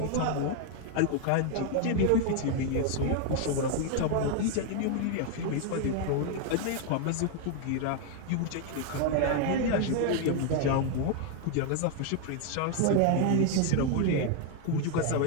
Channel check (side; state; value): both; different; correlation 0.01